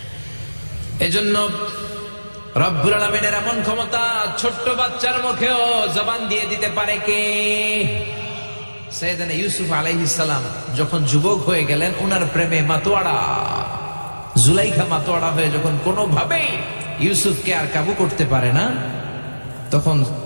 এজন্য রব্বুল আলামিনের এমন ক্ষমতা, ছোট্ট বাচ্চার মুখেও জবান দিয়ে দিতে পারে কে? সাইয়েদনা ইউসুফ আলাইহিস সালাম যখন যুবক হয়ে গেলেন, ওনার প্রেমে মাতোয়ারা জুলাইখা মাতোয়ারা হয়ে যখন কোনোভাবেই ইউসুফকে আর কাবু করতে পারে না, তখন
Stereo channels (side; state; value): both; inverted; correlation -1.00